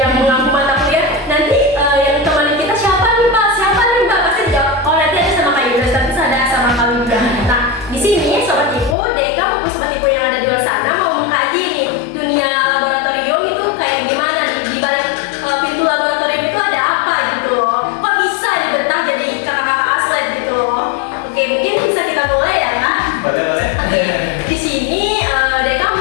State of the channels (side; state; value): right; drops out; at 9.0 s